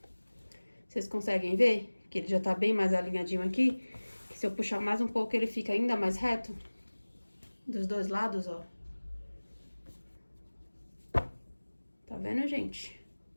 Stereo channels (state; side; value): inverted; both; correlation -1.00